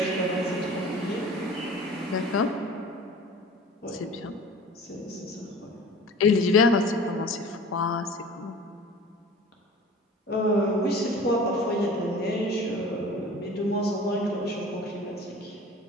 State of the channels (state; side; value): normal; both; correlation 0.42